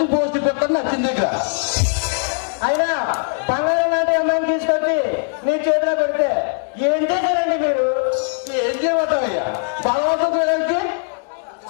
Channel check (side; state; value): right; silent; digital silence